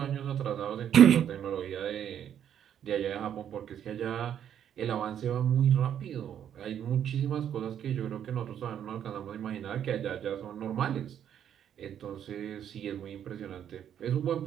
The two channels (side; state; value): left; quieter; 9.5 dB